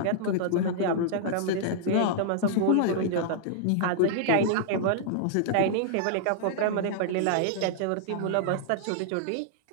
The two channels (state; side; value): different; both; correlation -0.01